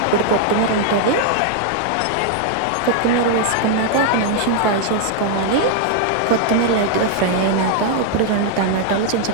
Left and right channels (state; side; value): different; both; correlation 0.00